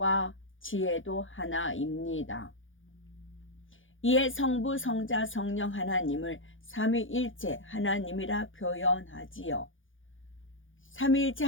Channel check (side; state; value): right; late; 0.58 ms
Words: 지혜도 하나입니다. 이에 성부, 성자, 성령 하나님을 삼위일체 하나님이라 표현하지요. 삼위일체